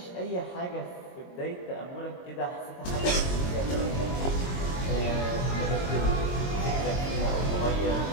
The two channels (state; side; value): late; right; 22 ms